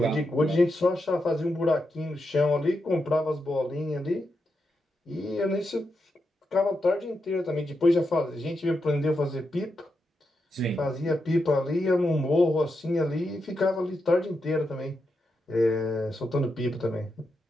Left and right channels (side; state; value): both; normal; correlation 0.85